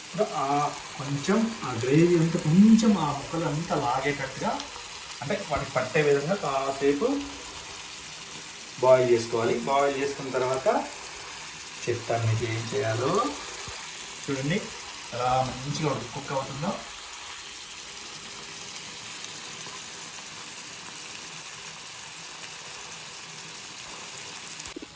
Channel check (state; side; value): identical; both; correlation 1.00